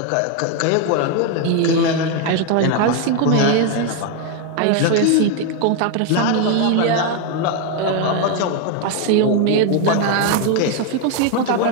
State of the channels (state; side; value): different; both; correlation 0.01